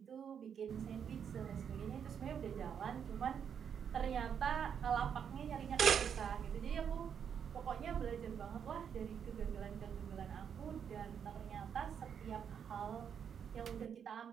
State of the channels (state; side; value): quieter; left; 7.8 dB